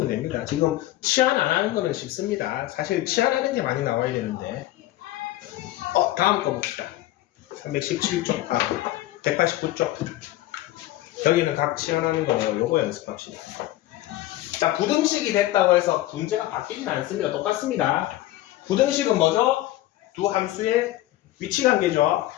됩니다. 지금 치환 안 하는 거는 쉽습니다. 사실 치환하는 게 많이 나와야 되는데 다음 거 봅시다. 317쪽 189쪽 여기는 각 치환하는 거예요. 요거 연습합시다. 자, 부등식이 됐다고 해서 문제가 바뀌진 않습니다. 똑같습니다. 부등식은 뭐죠? 두 함수의 위치 관계죠.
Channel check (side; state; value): right; quieter; 15.5 dB